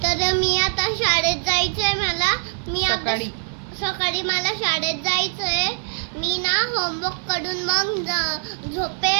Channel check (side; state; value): left; silent; 59 dB below the other